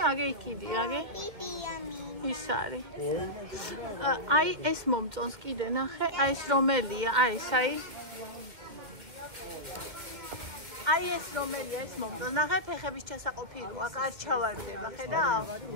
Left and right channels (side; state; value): left; late; 2.4 ms